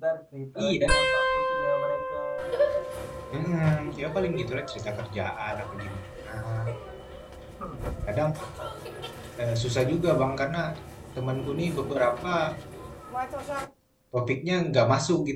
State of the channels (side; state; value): both; identical; correlation 1.00